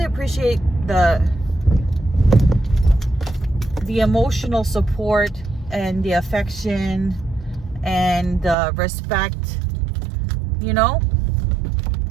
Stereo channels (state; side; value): drops out; left; at 8.6 s